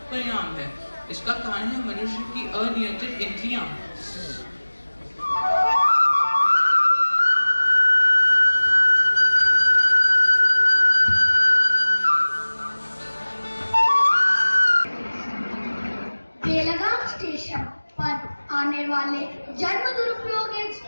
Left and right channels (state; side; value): inverted; both; correlation -1.00